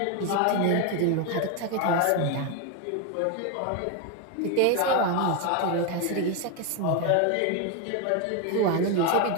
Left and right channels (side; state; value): both; different; correlation 0.02